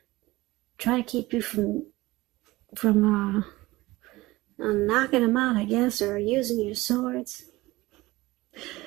try to keep you from knocking them out, I guess, or using your swords.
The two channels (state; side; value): quieter; left; 19.6 dB